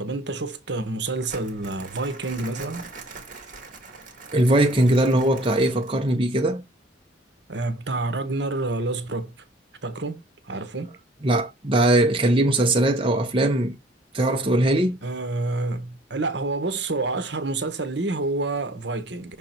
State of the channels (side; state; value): both; normal; correlation 0.52